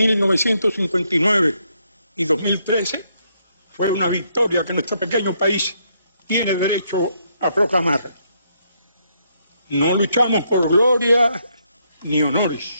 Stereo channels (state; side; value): inverted; both; correlation -0.74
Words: y 2013 fue una victoria que nuestro pequeño país tiene derecho a proclamar. No luchamos por gloria ni